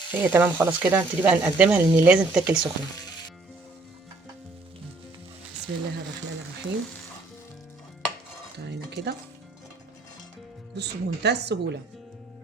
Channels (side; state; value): left; quieter; 3.4 dB